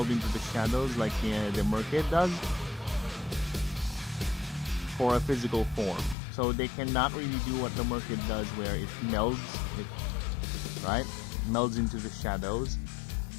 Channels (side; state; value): right; drops out; at 6.2 s